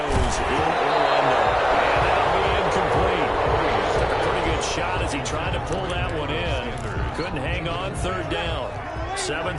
in Orlando. And that'll be incomplete. Took a pretty good shot as he tried to pull that one in. Couldn't hang on, 3rd down.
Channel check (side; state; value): both; identical; correlation 1.00